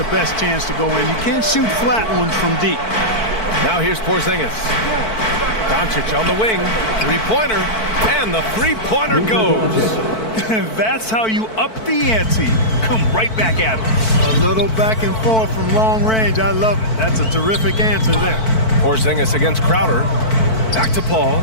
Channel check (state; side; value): late; right; 4.5 ms